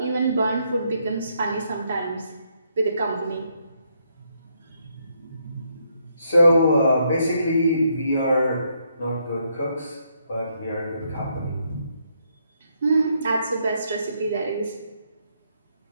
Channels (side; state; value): both; inverted; correlation -0.75